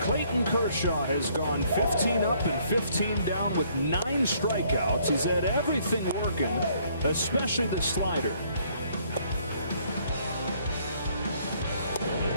Kershaw has gone 15 up and 15 down with 9 strikeouts. He's had everything working, especially the slider.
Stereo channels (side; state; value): both; inverted; correlation -0.65